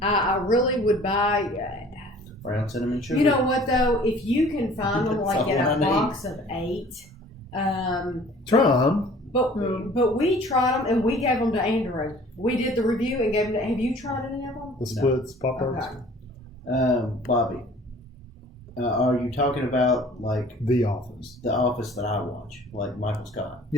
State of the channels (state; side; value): normal; both; correlation 0.50